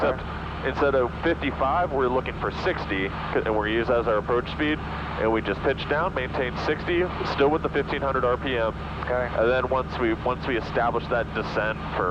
instead of 55, we're looking for 60, and we're used as our approach speed. And we just pitch down, maintain 60, still with the 1500 RPM. Okay. And then once we establish that descent for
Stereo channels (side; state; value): both; identical; correlation 1.00